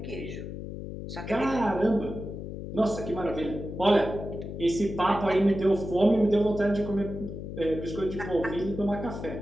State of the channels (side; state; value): left; noise; hum, 8 dB below the sound